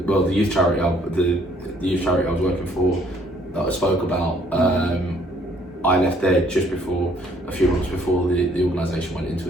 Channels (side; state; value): both; normal; correlation 0.63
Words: youth charity I was working for, that I spoke about. I left there just before, a few months before the organisation went into